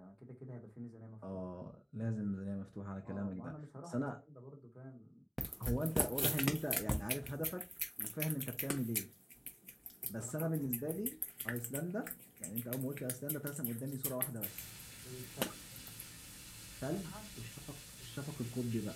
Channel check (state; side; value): identical; both; correlation 1.00